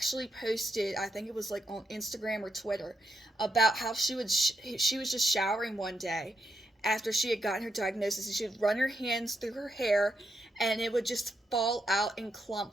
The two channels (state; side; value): normal; both; correlation 0.81